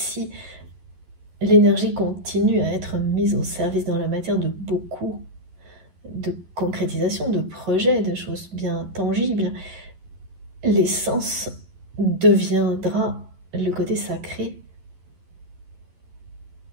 l'énergie continue à être mise au service dans la matière de beaucoup de concrétisation, de projets, de choses bien tangibles, l'essence deviendra le côté sacré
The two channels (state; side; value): late; left; 11 ms